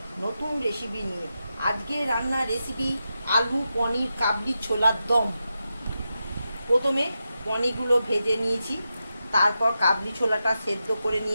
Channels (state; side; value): inverted; both; correlation -0.89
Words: নতুন রেসিপি নিয়ে। আজকে রান্নার রেসিপি আলু পনির কাবলি ছোলার দম। প্রথমে পনিরগুলো ভেজে নিয়েছি, তারপর কাবলি ছোলাটা সেদ্ধ করে